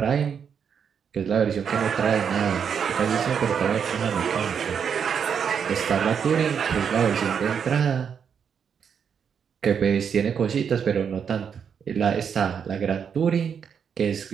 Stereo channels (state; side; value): quieter; left; 7.2 dB